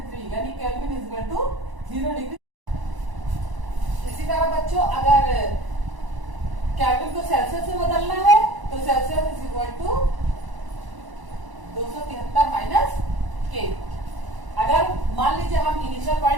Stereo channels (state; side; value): late; left; 1.0 ms